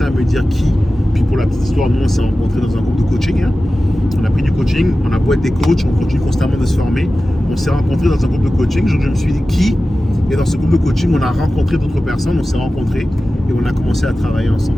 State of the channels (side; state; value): both; normal; correlation 0.95